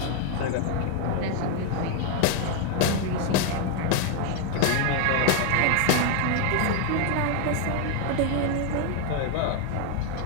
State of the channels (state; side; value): different; both; correlation 0.01